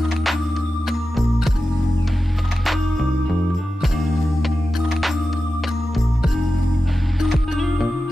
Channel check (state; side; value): normal; both; correlation 0.92